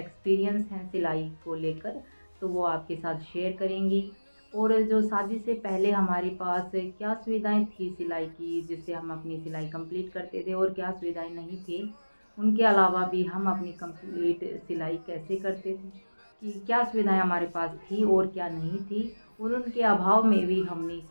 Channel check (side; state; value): both; inverted; correlation -1.00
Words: हैं सिलाई को लेकर, तो वो आपके साथ शेयर करेंगी। और जो शादी से पहले हमारे पास क्या सुविधाएं थी सिलाई की, जिससे हम अपनी सिलाई कंप्लीट करते थे, और क्या सुविधाएं नहीं थी, उनके अलावा भी हम अपनी कंप्लीट सिलाई कैसे करते थे, कि क्या सुविधाएं हमारे पास थी और क्या नहीं थी, और उनके अभाव में भी हमने